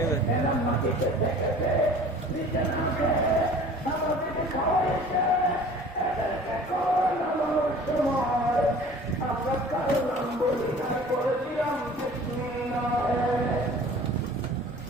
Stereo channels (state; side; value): normal; both; correlation 0.45